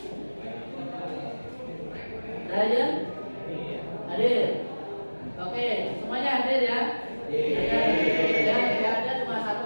Ryan hadir? Oke, semuanya hadir ya? Ya, ada cuma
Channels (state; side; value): inverted; both; correlation -1.00